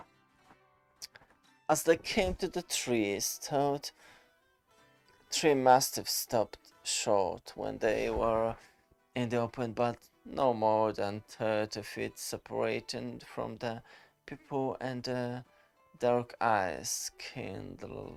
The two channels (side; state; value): both; identical; correlation 1.00